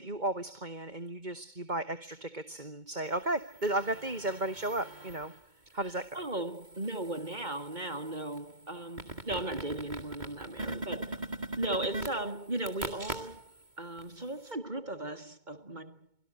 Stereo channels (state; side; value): late; left; 2.2 ms